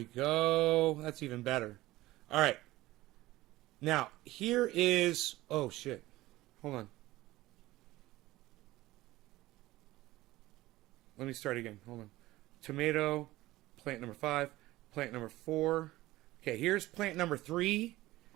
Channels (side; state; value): left; quieter; 17.6 dB